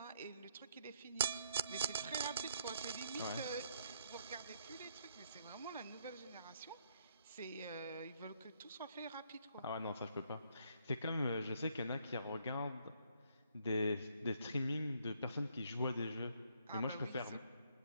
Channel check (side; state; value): both; inverted; correlation -0.70